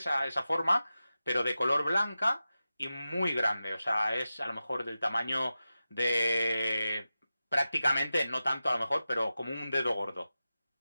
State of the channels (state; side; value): inverted; both; correlation -0.93